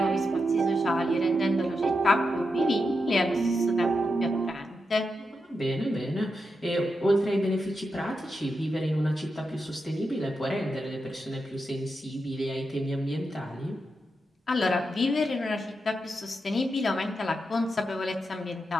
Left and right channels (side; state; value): both; normal; correlation 0.87